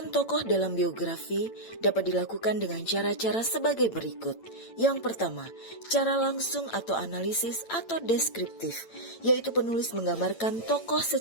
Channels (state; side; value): late; right; 8.9 ms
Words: tokoh dalam biografi dapat dilakukan dengan cara-cara sebagai berikut. Yang pertama, cara langsung atau analisis atau deskriptif, yaitu penulis menggambarkan tokoh